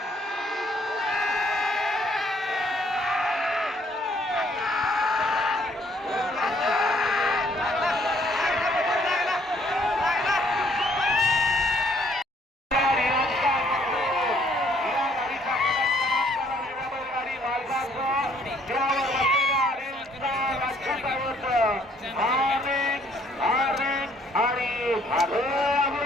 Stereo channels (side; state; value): both; normal; correlation 0.64